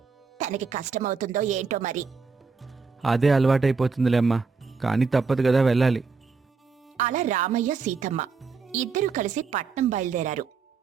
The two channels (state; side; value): quieter; left; 4.9 dB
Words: తనకి కష్టమవుతుందో ఏంటో మరి. అదే అలవాటైపోతుందిలే అమ్మా, కానీ తప్పదు కదా, వెళ్ళాలి. అలా రామయ్య సీతమ్మ ఇద్దరూ కలిసి పట్నం బయలుదేరారు.